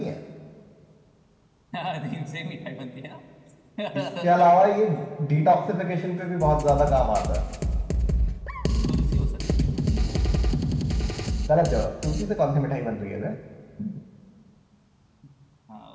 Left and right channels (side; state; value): both; identical; correlation 1.00